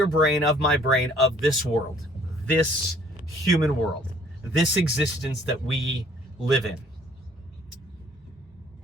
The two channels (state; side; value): normal; both; correlation 0.58